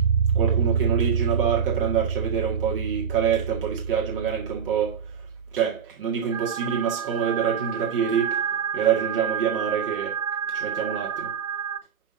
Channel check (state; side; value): quieter; left; 7.3 dB